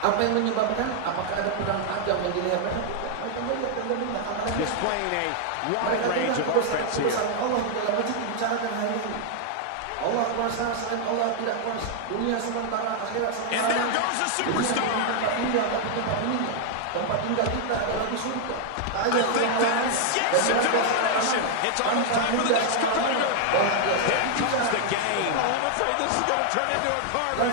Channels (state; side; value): different; both; correlation 0.00